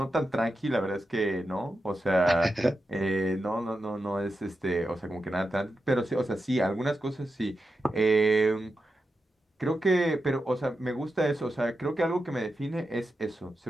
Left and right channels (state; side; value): normal; both; correlation 0.89